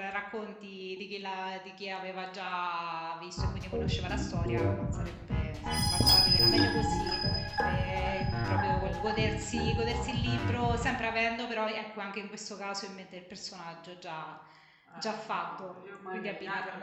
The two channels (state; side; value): identical; both; correlation 1.00